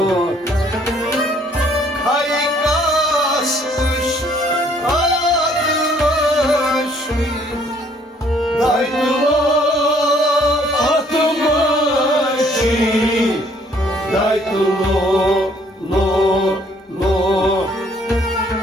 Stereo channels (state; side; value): normal; both; correlation 0.62